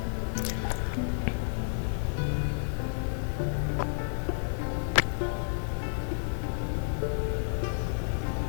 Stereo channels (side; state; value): right; silent; digital silence